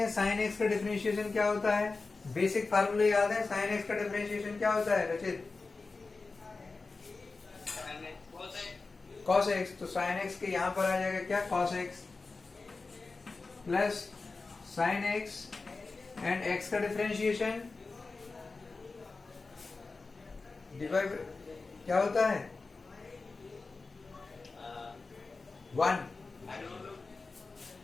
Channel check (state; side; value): quieter; right; 3.9 dB